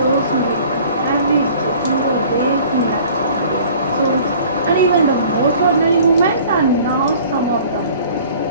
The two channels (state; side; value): inverted; both; correlation -0.50